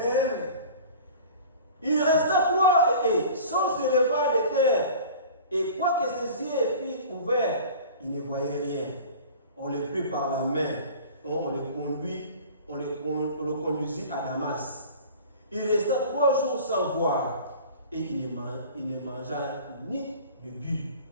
Il resta 3 et sans se lever de terre. Et quoique ses yeux fussent ouverts, il ne voyait rien. On le prit par la main. On le conduisit à Damas. Il resta 3 jours sans voir. Et il ne mangea ni ne but.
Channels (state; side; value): inverted; both; correlation -0.41